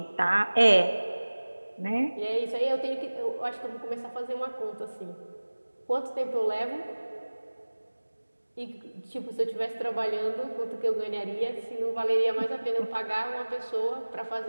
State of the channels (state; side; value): inverted; both; correlation -1.00